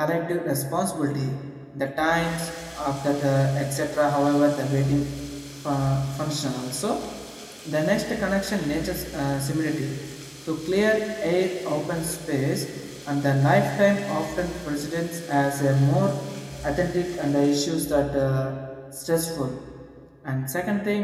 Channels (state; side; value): identical; both; correlation 1.00